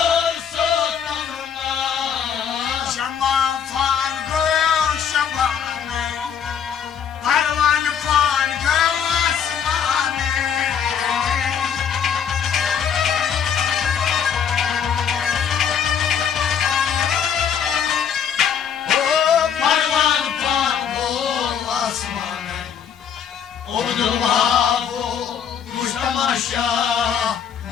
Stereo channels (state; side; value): quieter; right; 7.8 dB